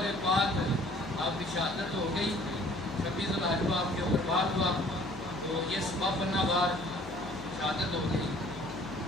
پاک آپ کی شہادت ہو گئی 26 ذوالحجہ آپ کے اوپر بات ہوا تو یہ سبب بننا بار شہادت ہو گئی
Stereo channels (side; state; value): left; noise; hum, 16 dB below the sound